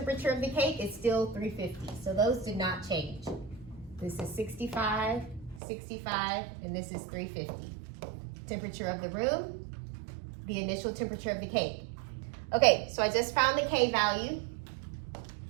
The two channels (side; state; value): left; drops out; at 5.6 s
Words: of the cake is still 350. So those did not change. This is 65, 65, and this is 350. Temperature of the room, the initial temperature of the cake. Okay, so I just found the K value.